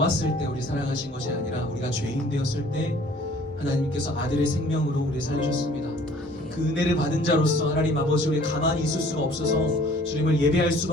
때 우리 사랑하신 것이 아니라 우리가 죄인 되었을 때 하나님께서 아들의 생명으로 우리 살리셨습니다. 그 은혜를 받은 자로서 하나님 아버지 우리 가만히 있을 수가 없어서 주님을 예배할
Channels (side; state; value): both; normal; correlation 0.53